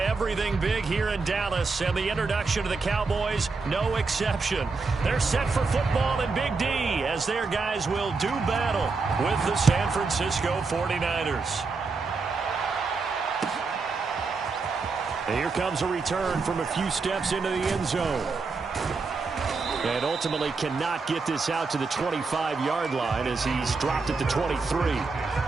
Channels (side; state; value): left; quieter; 4.3 dB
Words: big here in Dallas, and the introduction to the Cowboys, no exception. They're set for football in Big D as their guys will do battle with the San Francisco 49ers. And here comes a return from a few steps into the end zone. And ultimately cannot get this out to the 25-yard line as he's dropped at the 23.